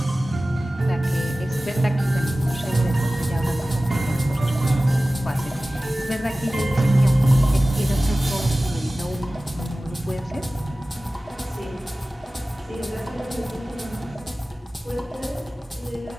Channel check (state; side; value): normal; both; correlation 0.97